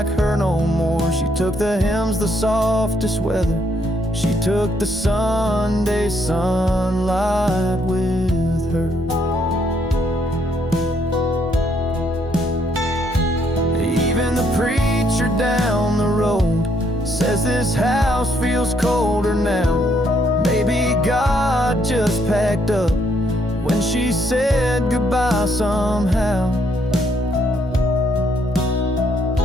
her no more. She took the hymns, the softest weather, she took the Sunday sunlight with her. Even the preacher down the road says this house feels colder now. God just packed up when she said goodbye somehow.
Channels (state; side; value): normal; both; correlation 0.71